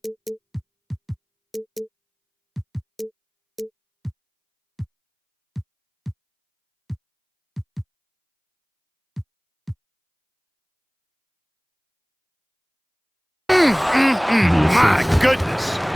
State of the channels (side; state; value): both; identical; correlation 1.00